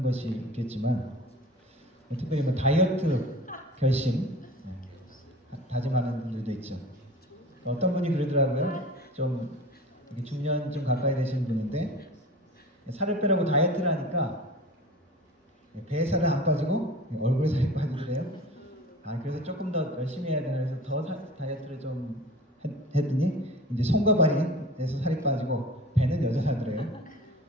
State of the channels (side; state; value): both; normal; correlation 0.39